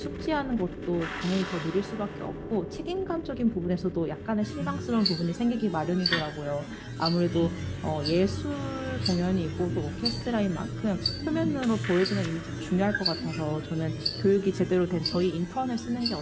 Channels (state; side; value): identical; both; correlation 1.00